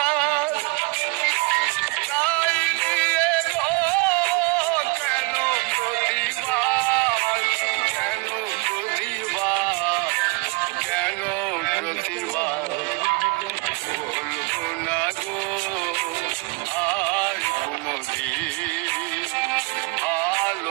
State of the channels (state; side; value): quieter; left; 26.1 dB